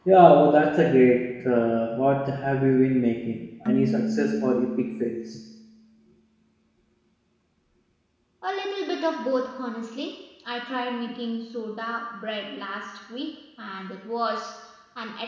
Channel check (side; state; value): both; identical; correlation 1.00